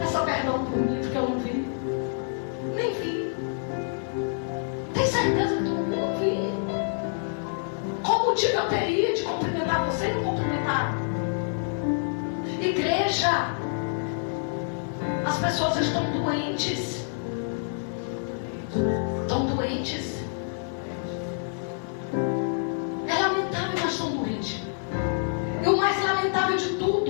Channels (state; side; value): silent; right; digital silence